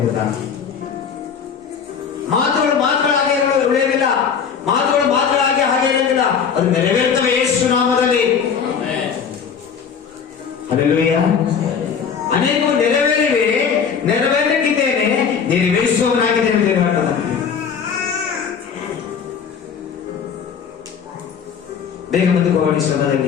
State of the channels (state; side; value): quieter; right; 6.8 dB